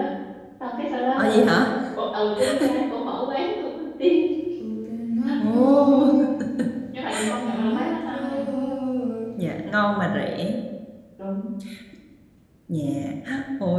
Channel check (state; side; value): identical; both; correlation 1.00